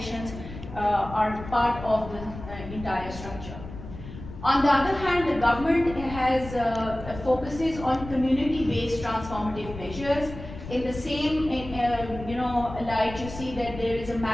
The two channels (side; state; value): left; noise; rumble, 12 dB below the sound